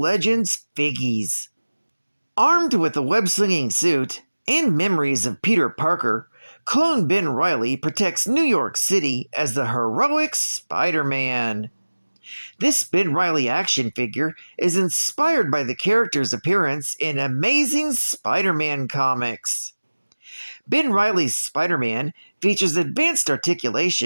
figgies. Armed with a web-slinging suit and memories of Peter Parker, clone Ben Reilly protects New York City as the heroic Spider-Man. This Ben Reilly action figure is inspired by the character's appearance in Amazing Spider-Man comics. Ben Reilly's Spider-Man features advanced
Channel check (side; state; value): both; inverted; correlation -1.00